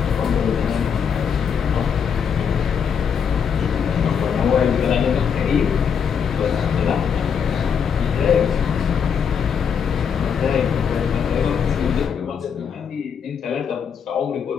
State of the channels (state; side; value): quieter; right; 7.1 dB